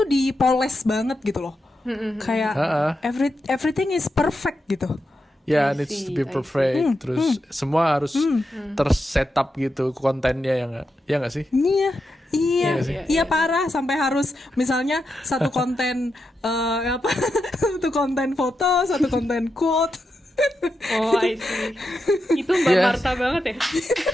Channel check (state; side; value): normal; both; correlation 0.86